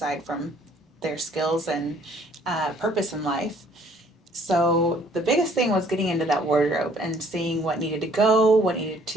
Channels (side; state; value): both; normal; correlation 0.60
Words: from their skills and purpose in life. So the biggest thing was getting into that wardrobe and seeing what needed to go, what needed